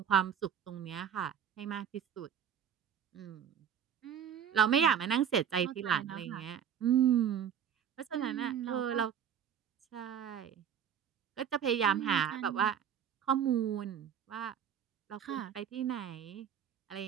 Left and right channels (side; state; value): left; quieter; 8.5 dB